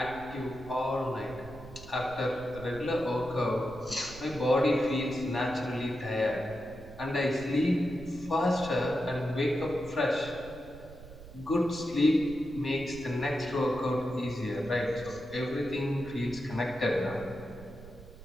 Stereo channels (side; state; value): right; noise; rumble, 16 dB below the sound